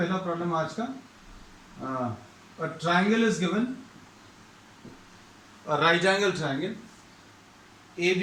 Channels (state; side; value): identical; both; correlation 1.00